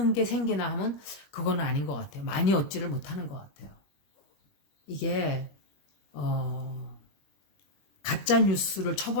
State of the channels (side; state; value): right; late; 21 ms